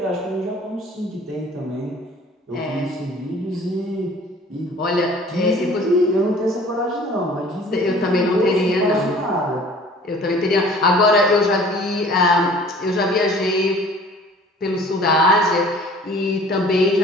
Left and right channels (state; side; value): normal; both; correlation 0.49